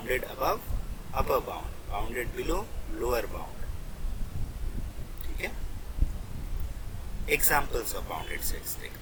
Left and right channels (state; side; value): identical; both; correlation 1.00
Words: above upper bound, bounded below lower bound. ठीक है, एग्जाम्पल्स ऑफ बाउंडेड सेट्स